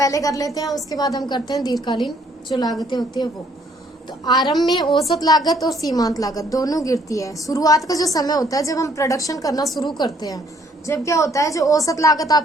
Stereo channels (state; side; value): normal; both; correlation 0.65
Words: कर लेते हैं, उसके बाद हम करते हैं दीर्घकालीन जो लागतें होती है वो। तो आरंभ में औसत लागत और सीमांत लागत दोनों गिरती है। शुरुआत का जो समय होता है जब हम प्रोडक्शन करना शुरू करते हैं, जब क्या होता है, जो औसत लागत